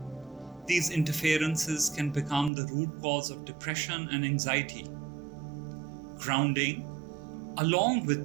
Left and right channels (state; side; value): drops out; left; at 2.5 s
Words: These interferences can become the root cause of depression and anxiety. Grounding, along